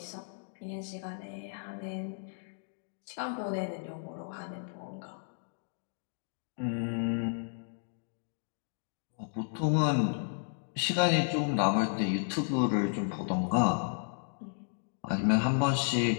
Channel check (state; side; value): silent; right; digital silence